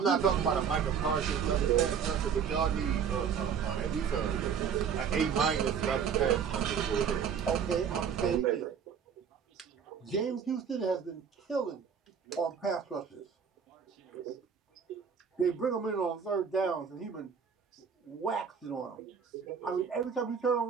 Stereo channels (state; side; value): quieter; left; 7.1 dB